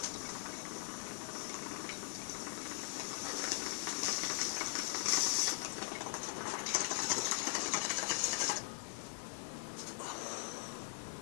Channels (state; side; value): silent; right; digital silence